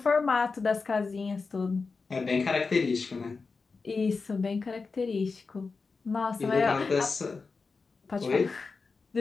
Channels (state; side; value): quieter; right; 4.4 dB